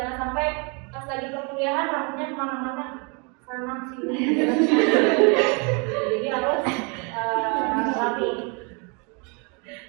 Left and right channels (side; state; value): left; quieter; 33.1 dB